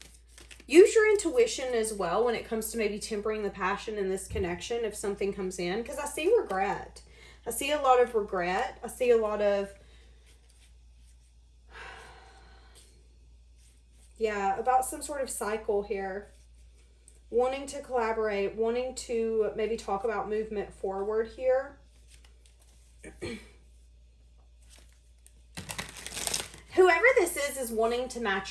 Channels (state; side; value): identical; both; correlation 1.00